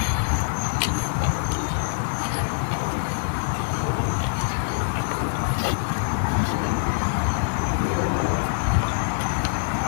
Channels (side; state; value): right; silent; 62 dB below the other